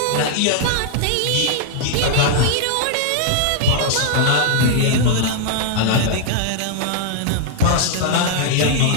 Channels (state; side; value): different; both; correlation -0.01